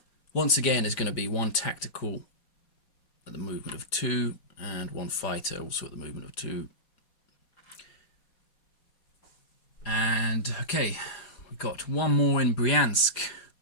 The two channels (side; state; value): right; late; 4.9 ms